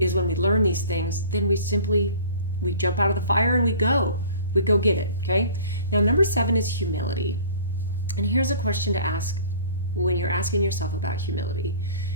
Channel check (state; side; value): inverted; both; correlation -0.45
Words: when we learn these things, then we jump out of the fire and we go get it. Okay. Now, number 7 is humility. And here's a question to ask when you're asking yourself about humility.